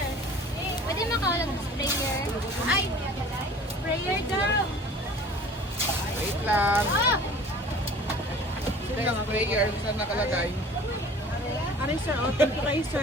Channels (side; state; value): both; normal; correlation 0.46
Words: Pwede makawalag ng sprayer. Ay, sprayer daw. Wait lang. Oh! Ito yung sprayer. Saan nakalagay? Aray sir, oh, thank you kayo